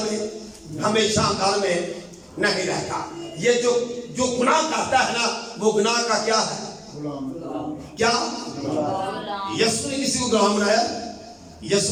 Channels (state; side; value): identical; both; correlation 1.00